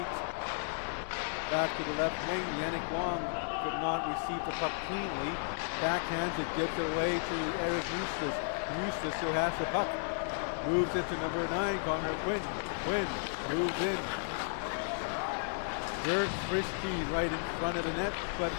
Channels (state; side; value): silent; right; digital silence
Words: Back to the left wing. Yannick Wong could not receive the puck cleanly. Backhands it, gives it away to Eric Eustace. Eustace, who has the puck, moves it to number 9, Connor Quinn. Quinn moves in. Jerks Frisky right in front of the net, but